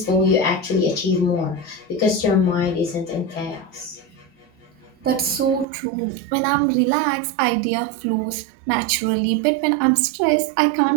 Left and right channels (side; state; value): left; drops out; at 5.7 s